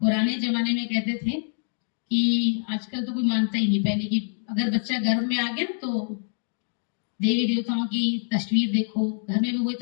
जमाने में कहते थे कि आजकल तो कोई मानता ही नहीं, पहले कि अगर बच्चा गर्भ में आ गया तो देवी देवताओं की तस्वीर देखो, घर में भी वही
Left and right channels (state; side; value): silent; right; digital silence